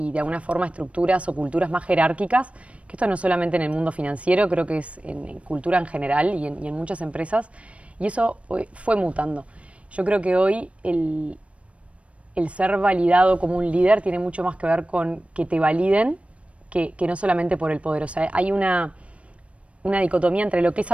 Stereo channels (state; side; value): late; left; 0.063 ms